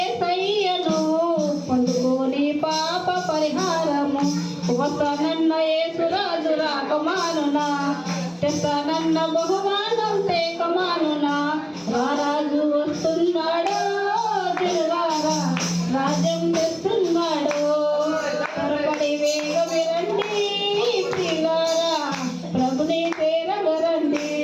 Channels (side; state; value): both; identical; correlation 1.00